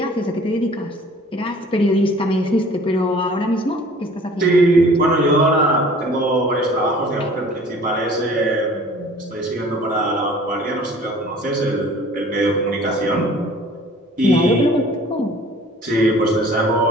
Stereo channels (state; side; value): normal; both; correlation 0.49